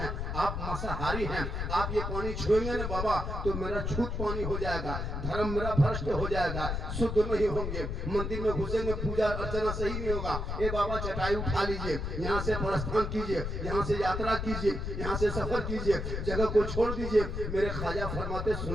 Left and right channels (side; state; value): left; noise; rumble, 3 dB below the sound